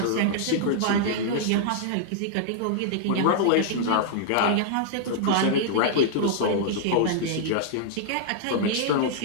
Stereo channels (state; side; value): different; both; correlation -0.01